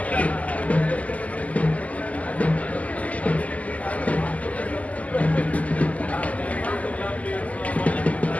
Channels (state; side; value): late; right; 0.073 ms